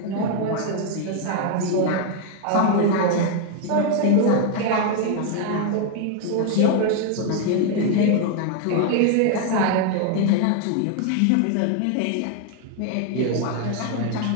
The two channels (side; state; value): both; different; correlation 0.00